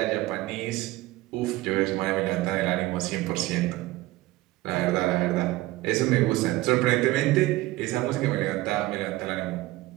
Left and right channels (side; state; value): left; quieter; 18.3 dB